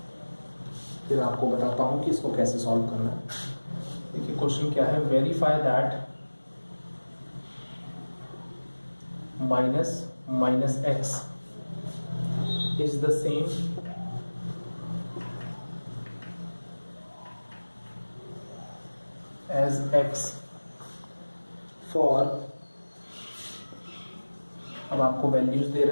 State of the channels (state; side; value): inverted; both; correlation -1.00